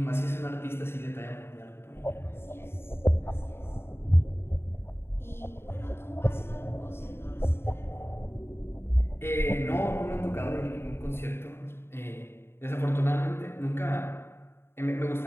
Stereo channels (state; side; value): late; right; 0.11 ms